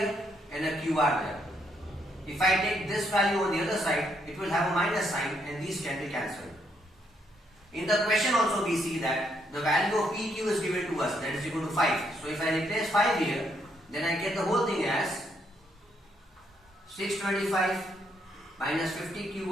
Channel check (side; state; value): both; normal; correlation 0.74